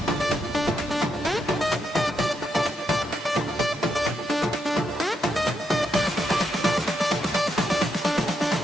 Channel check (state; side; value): normal; both; correlation 0.80